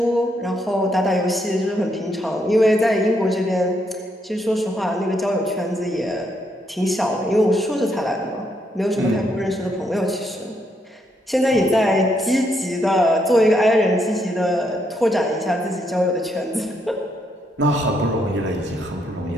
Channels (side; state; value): both; normal; correlation 0.76